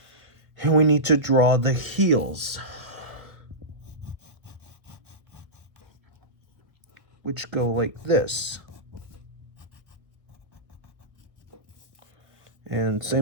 and we need to draw the heels, which go like this. And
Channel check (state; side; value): late; left; 1.2 ms